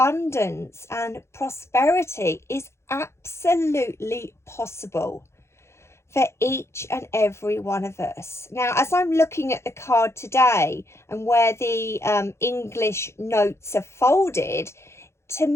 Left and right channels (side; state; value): right; late; 0.13 ms